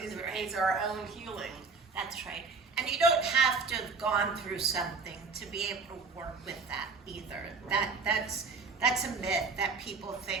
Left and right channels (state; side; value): quieter; left; 4.5 dB